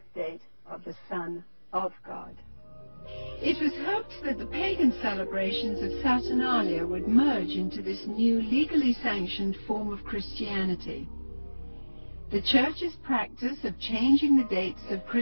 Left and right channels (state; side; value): inverted; both; correlation -1.00